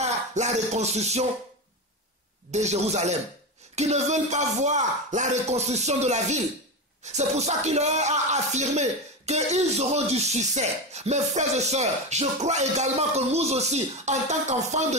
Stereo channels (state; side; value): normal; both; correlation 0.18